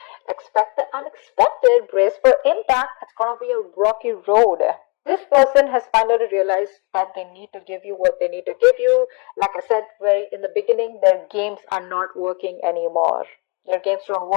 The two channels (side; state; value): right; quieter; 31.7 dB